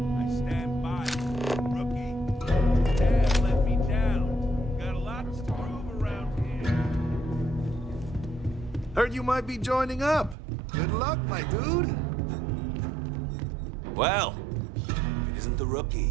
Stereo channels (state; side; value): drops out; left; at 10.4 s